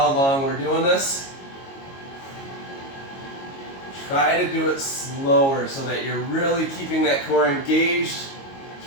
long we're doing this. Try to do it slower so that you're really keeping that core engaged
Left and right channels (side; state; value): right; late; 22 ms